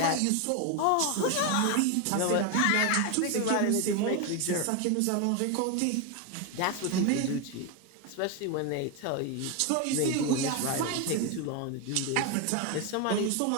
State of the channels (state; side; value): different; both; correlation 0.01